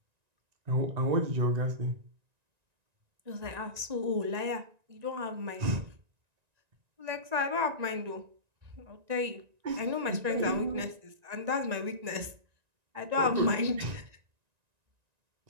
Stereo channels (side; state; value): left; late; 1.9 ms